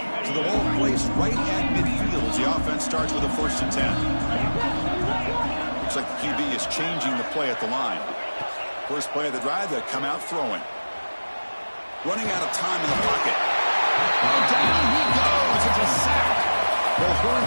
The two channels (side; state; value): both; inverted; correlation -1.00